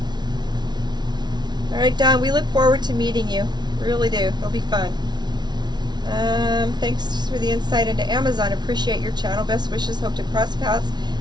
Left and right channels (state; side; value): late; left; 0.20 ms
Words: right, Don, we look forward to meeting you. We really do. It'll be fun. Thanks for the insight into Amazon. Appreciate your channel. Best wishes. Hope to cross paths